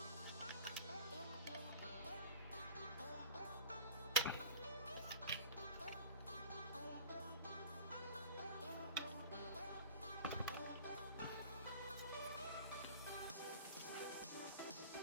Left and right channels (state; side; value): inverted; both; correlation -0.41